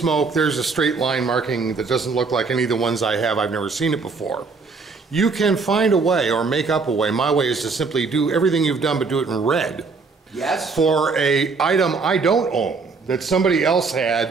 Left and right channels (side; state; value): left; quieter; 4.5 dB